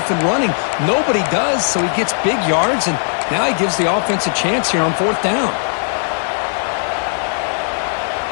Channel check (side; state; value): right; silent; 55 dB below the other